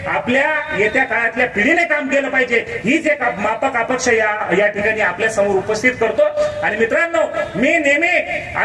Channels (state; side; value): identical; both; correlation 1.00